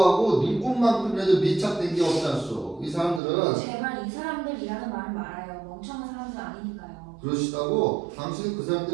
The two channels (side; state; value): left; drops out; at 3.2 s